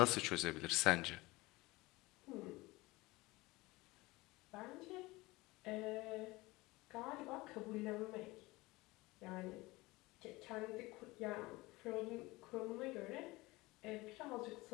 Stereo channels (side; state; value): right; quieter; 21.3 dB